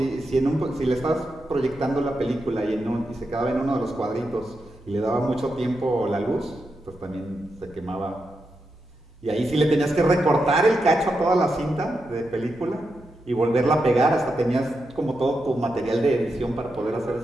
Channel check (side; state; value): both; normal; correlation 0.86